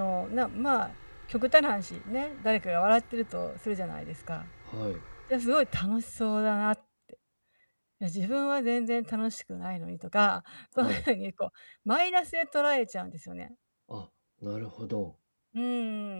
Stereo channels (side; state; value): both; inverted; correlation -1.00